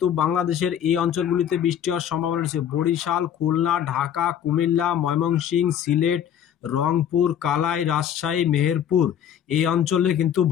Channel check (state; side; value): quieter; right; 9.6 dB